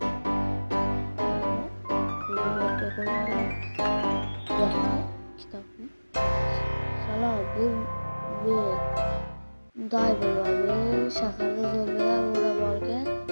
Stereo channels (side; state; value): both; inverted; correlation -1.00